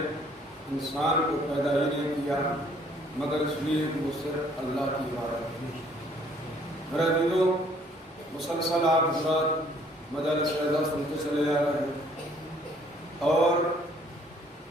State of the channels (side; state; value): both; normal; correlation 0.61